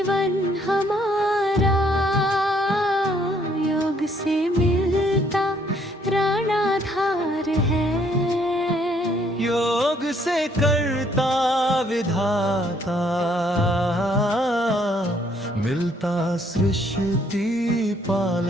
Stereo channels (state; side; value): normal; both; correlation 0.67